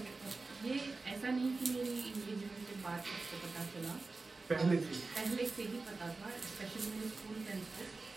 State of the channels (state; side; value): quieter; left; 3.7 dB